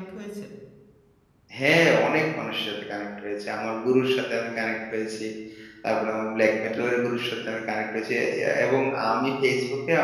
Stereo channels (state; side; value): identical; both; correlation 1.00